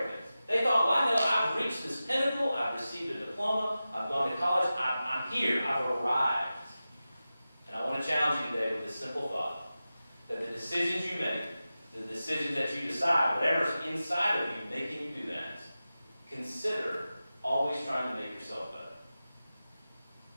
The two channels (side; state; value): both; inverted; correlation -0.94